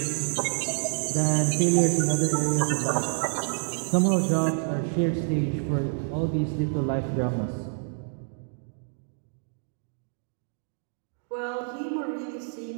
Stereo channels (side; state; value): left; silent; 60 dB below the other